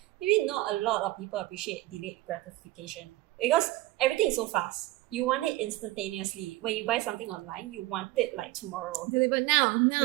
Maybe not a lot of people appreciate delayed gratification because everything is so fast. You want it instantaneously. When you buy something online, you want it like tomorrow. Delivered now,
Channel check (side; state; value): left; quieter; 18.0 dB